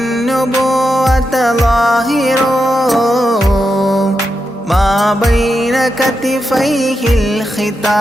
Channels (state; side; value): normal; both; correlation 0.87